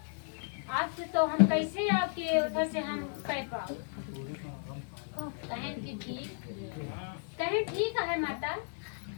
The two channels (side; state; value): right; silent; 55 dB below the other